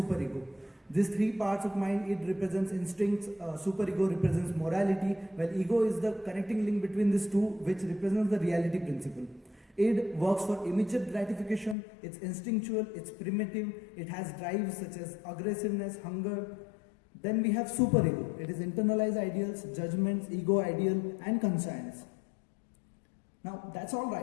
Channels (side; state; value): right; drops out; at 11.8 s